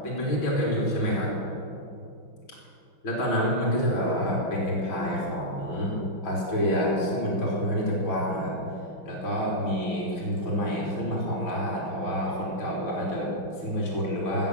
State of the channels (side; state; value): right; late; 6.0 ms